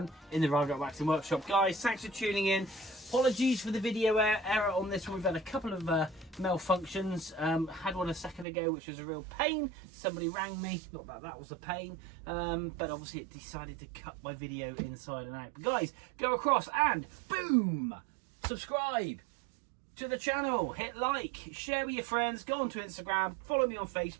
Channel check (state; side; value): drops out; left; at 8.5 s